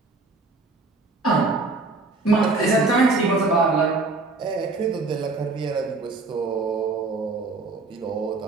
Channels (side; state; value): left; quieter; 3.6 dB